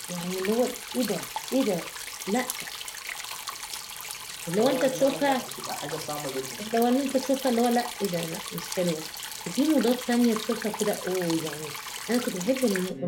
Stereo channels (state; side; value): identical; both; correlation 1.00